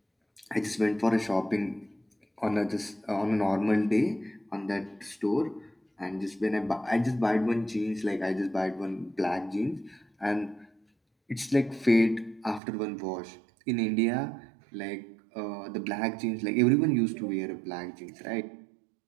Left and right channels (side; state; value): left; drops out; at 12.6 s